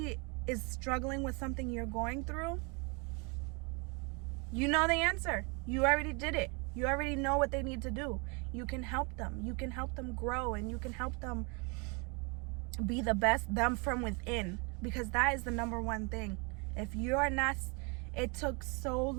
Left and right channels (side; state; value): left; quieter; 32.0 dB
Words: is struggling with something you're going through, you know the answer. You already did it. You already know what they need to do. You can help them. You can help them grow, and you can help them be the best them from within, because that is the number one thing. If you're not... It took so